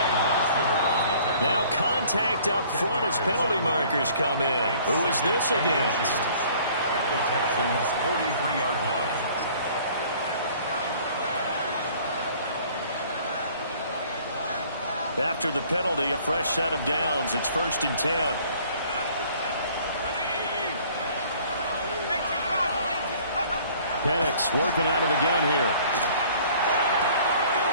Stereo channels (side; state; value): both; inverted; correlation -0.54